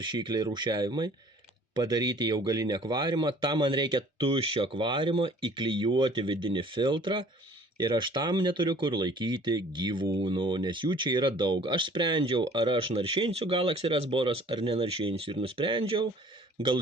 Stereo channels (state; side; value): normal; both; correlation 0.52